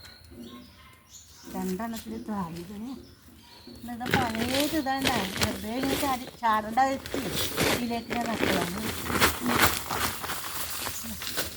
രണ്ടെണ്ണത്തിൽ താഴ്ന്നതിന് എന്താ പഴയത് ഇതാണ്ട വെറുതെ ഇങ്ങനെ ചാടേണ്ട വെച്ച് ഇതിലേക്ക് ഞാൻ നട്ടതാണ്.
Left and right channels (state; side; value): identical; both; correlation 1.00